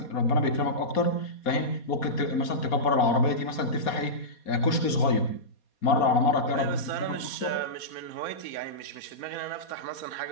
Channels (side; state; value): right; late; 4.2 ms